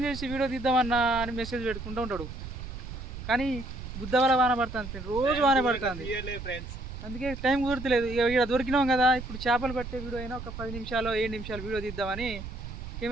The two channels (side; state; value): right; noise; rumble, 9 dB below the sound